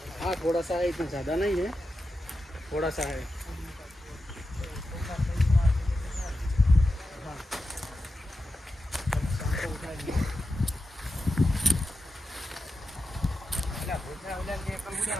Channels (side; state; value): both; normal; correlation 0.90